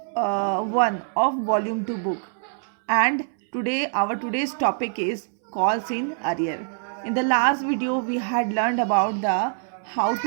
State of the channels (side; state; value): left; silent; 62 dB below the other